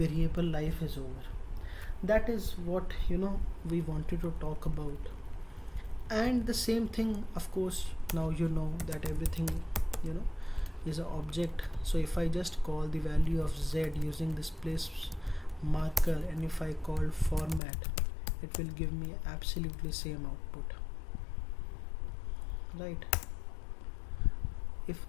life is over. That is what we wanted to talk about. And the same thing, of course, now you know that everything is an object. So if I just call the value of z using this place marker, and if I call format, it will give me absolutely same output, right? If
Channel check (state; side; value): drops out; right; at 17.6 s